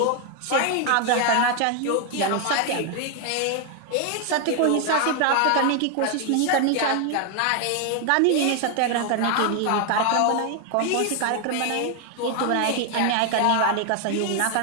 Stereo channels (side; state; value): both; different; correlation 0.01